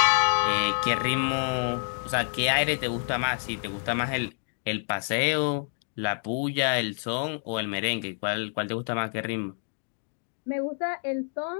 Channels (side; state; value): right; silent; digital silence